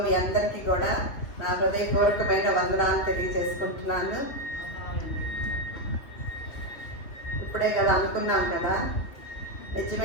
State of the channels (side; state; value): right; late; 3.4 ms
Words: మీ అందరికీ కూడా నా హృదయపూర్వకమైన వందనాలు తెలియజేసుకుంటున్నాను. ఇప్పుడే కదా అనుకున్నాం కదా,